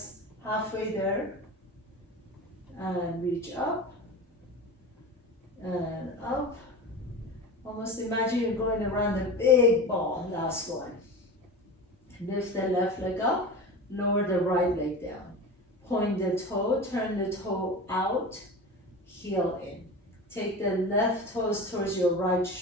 halfway there. And reach up and up. Almost imagine you're going around a big ball. Last one. Lift the left leg up, lower the right leg down. Point the toe, turn the toe out, heel in. Take the left toes towards your right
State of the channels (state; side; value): normal; both; correlation 0.30